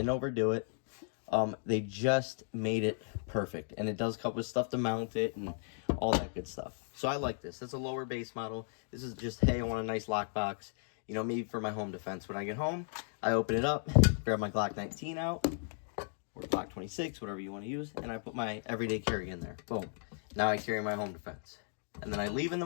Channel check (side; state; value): right; silent; digital silence